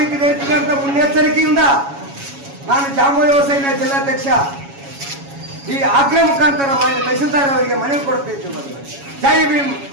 ಇರ್ತದೆ ಅಂತ ಮುನ್ನೆಚ್ಚರಿಕೆಯಿಂದ ನಾನು ಜಾಂಬೂರಿ ಯುವ ಸೇನೆಯ ಜಿಲ್ಲಾಧ್ಯಕ್ಷ ಈ ಆಗ್ರಹ ಮುಖಾಂತರ ತಹಸೀಲ್ದಾರ್ ಅವರಿಗೆ ಮನವಿ ಕೊಡ್ತಿದ್ದೀವಿ. ಜೈ ಭೀಮ್,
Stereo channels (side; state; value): left; late; 7.2 ms